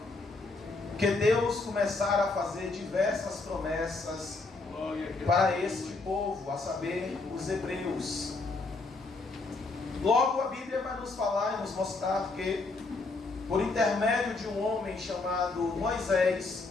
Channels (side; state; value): right; quieter; 3.6 dB